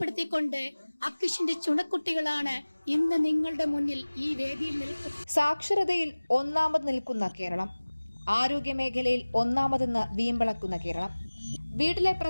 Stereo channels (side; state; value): both; inverted; correlation -1.00